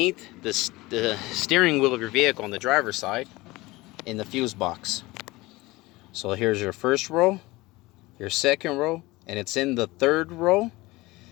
the steering wheel of your vehicle on the driver's side in the fuse box. So here's your first row, your second row, and it's in the third row.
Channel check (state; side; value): quieter; right; 20.8 dB